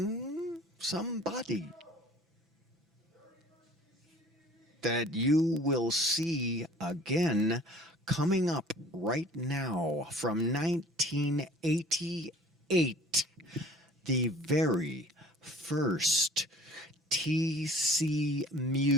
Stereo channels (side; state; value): both; normal; correlation 0.48